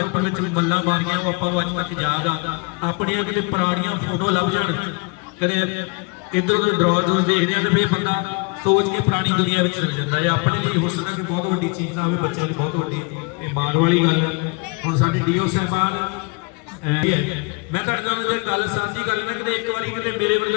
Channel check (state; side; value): quieter; right; 31.5 dB